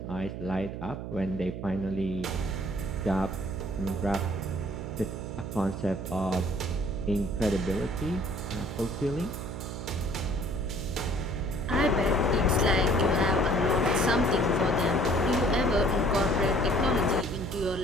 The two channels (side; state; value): right; noise; hum, 7 dB below the sound